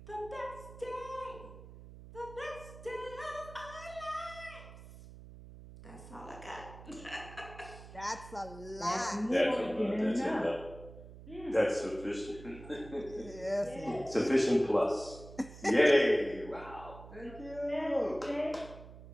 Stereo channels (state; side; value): noise; right; hum, 16 dB below the sound